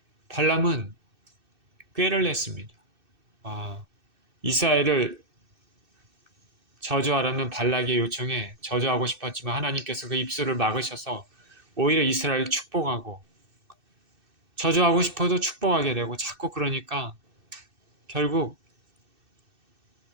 발람은 꾀를 냈습니다. 이스라엘을 저주하라는 발락의 요청에 저주하고 싶었지만 하나님께서 그 입술을 막으셔서 오히려 이스라엘을 축복하고 저주하고 싶어도 축복하게 되고 자꾸 그러니까 결국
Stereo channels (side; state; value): left; late; 2.6 ms